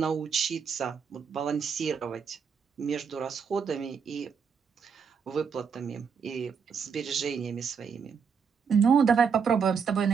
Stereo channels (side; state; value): left; quieter; 6.3 dB